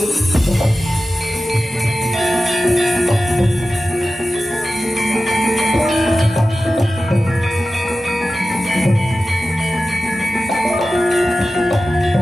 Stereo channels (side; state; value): both; normal; correlation 0.94